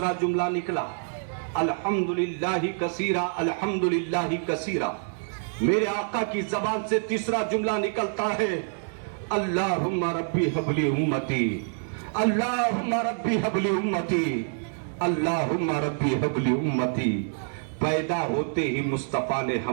جملہ نکلا الحمدللہ کثیرا الحمدللہ کثیرا، میرے آقا کی زبان سے تیسرا جملہ نکلتا ہے اللہم ربی حبلی امتی، اللہم ربی حبلی امتی، اللہم ربی حبلی امتی۔ پیدا ہوتے ہی مصطفیٰ نے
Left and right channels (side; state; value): left; silent; 60 dB below the other